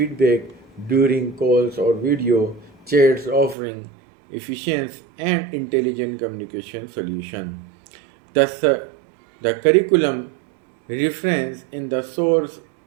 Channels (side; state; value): left; drops out; at 3.6 s